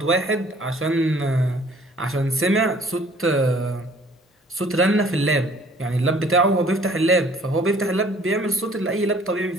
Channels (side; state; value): both; normal; correlation 0.55